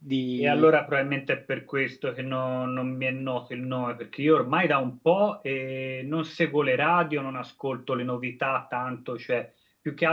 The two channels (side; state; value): both; identical; correlation 1.00